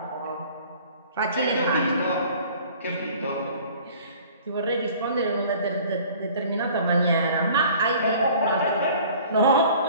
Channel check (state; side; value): inverted; both; correlation -0.49